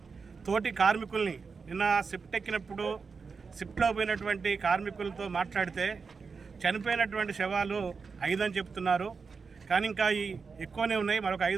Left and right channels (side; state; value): left; quieter; 5.1 dB